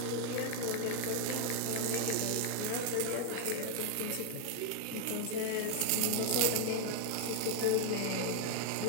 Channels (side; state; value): both; different; correlation 0.00